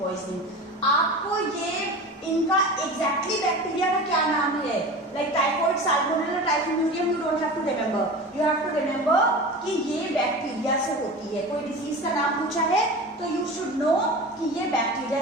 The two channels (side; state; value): both; normal; correlation 0.32